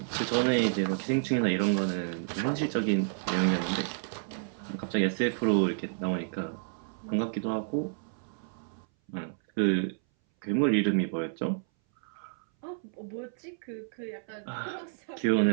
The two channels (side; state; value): left; silent; 58 dB below the other